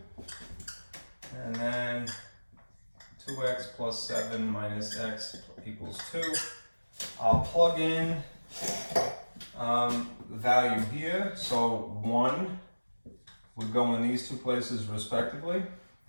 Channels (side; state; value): both; inverted; correlation -1.00